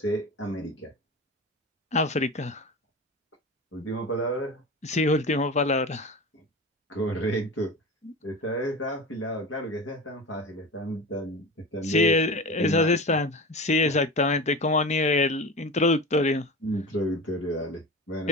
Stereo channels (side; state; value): both; normal; correlation 0.30